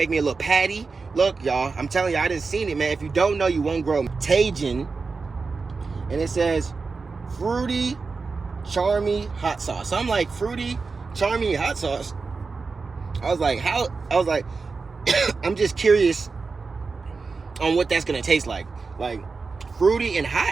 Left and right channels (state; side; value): quieter; left; 4.4 dB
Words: me a little patty. Look, y'all, I'm telling you, I didn't seen it, man. If you don't know, you won't grow. Tajin. And it says fruity, charmy hot sauce. So I'm like, fruity, charmy hot sauce. I was like, I'm just curious on what that's gonna taste like. Like fruity and